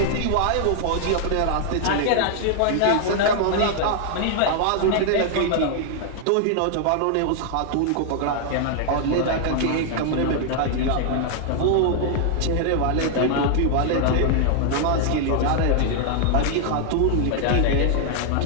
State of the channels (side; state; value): both; different; correlation 0.00